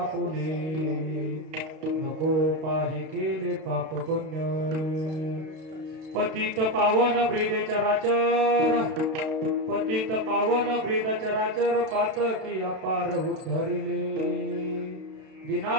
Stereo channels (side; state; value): left; late; 32 ms